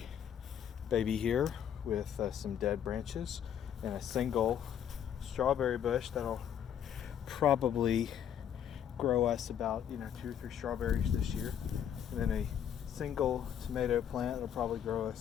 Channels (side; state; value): right; quieter; 9.2 dB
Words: baby here with some dead branches and a single strawberry bush that'll probably grow us about 2 or 3 strawberries this year, and then a single tomato plant that'll probably grow